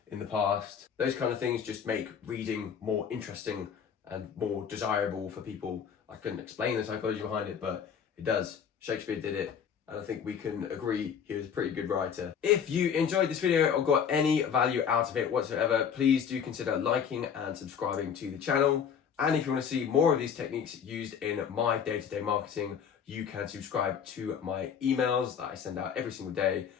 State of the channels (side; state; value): right; quieter; 7.5 dB